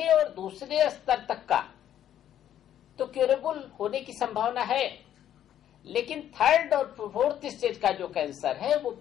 और दूसरे स्तर तक का तो क्यूरेबल होने की संभावना है, लेकिन थर्ड और फोर्थ स्टेज का जो कैंसर है वो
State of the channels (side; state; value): right; quieter; 10.8 dB